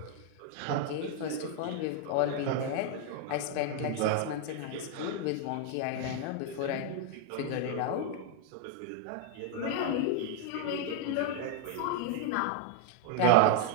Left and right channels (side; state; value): both; different; correlation 0.01